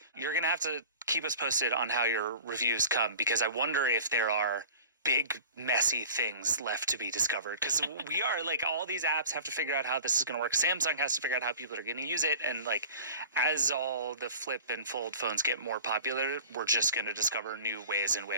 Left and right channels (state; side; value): inverted; both; correlation -0.40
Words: you're going to have to keep us posted on how your reviews come, because I wonder if there are big, messy things left to be discovered. Because we are, like, all these apps have to figure out how this is going to work. Samsung has to figure out how people are going to use it. And, like, as all the flip and fold phones get more popular, we're just going to discover new ways in